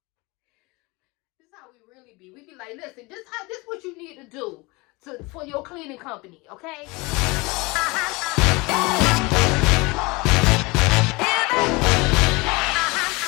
This is how we really be. We be like, listen, this what you need to do for your cleaning company, okay?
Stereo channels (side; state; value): right; quieter; 25.0 dB